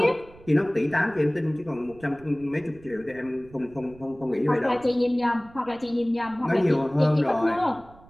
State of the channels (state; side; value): noise; right; rumble, 23 dB below the sound